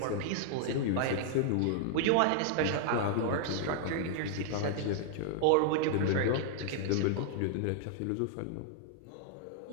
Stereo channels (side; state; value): both; different; correlation -0.01